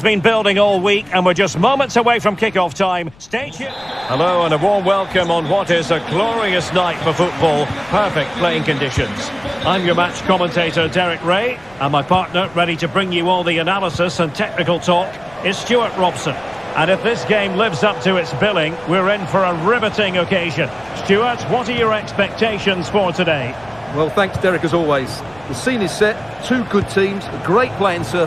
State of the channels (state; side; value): noise; left; rumble, 26 dB below the sound